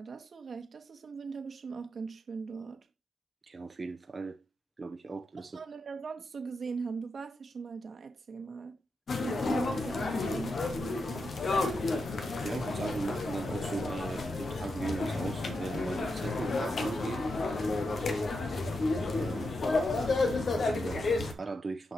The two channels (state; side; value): normal; both; correlation 0.86